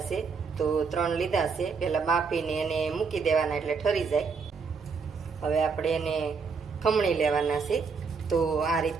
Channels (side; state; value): left; quieter; 5.3 dB